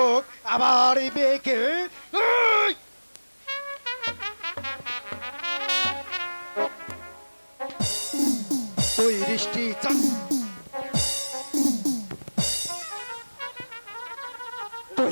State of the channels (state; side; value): inverted; both; correlation -1.00